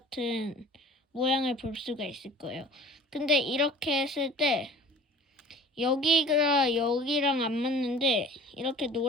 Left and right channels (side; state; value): both; normal; correlation 0.45